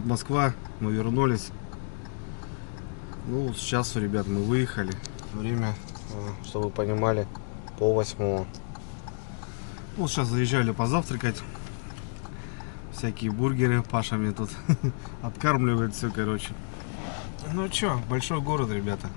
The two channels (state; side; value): silent; right; digital silence